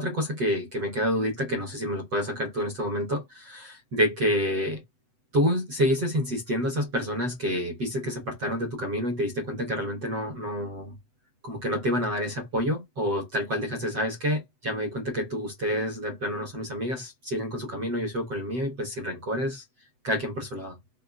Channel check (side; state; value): left; late; 7.9 ms